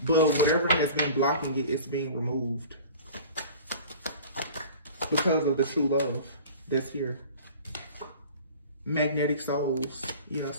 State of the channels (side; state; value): both; inverted; correlation -0.42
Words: But whatever has been blocking it, it's being removed. Because of the true love that's here. Magnetic souls. Yeah,